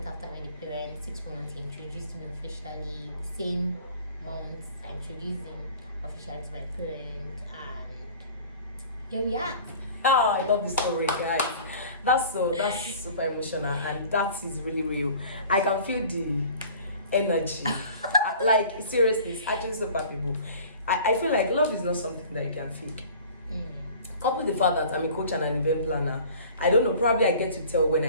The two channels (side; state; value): both; inverted; correlation -0.46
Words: after I met the parents, 6 months he introduced me officially. The same month I introduced him officially to my parents, and here we are. Oh, I love the story, guys. That's super emotional, and that is really real. I can feel the energy. Like, seriously, it's actually so palpable. I feel like love is not something that you can feel. Couple the fact that I'm a coach and an event planner, I don't know, probably I get to tell when